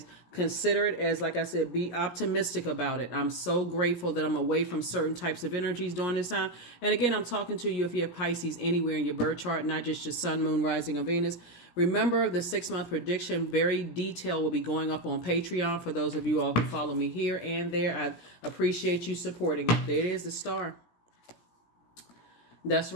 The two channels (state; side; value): late; right; 17 ms